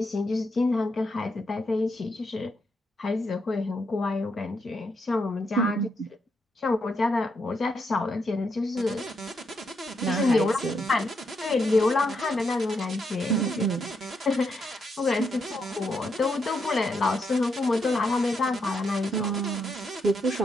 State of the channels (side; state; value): both; normal; correlation 0.80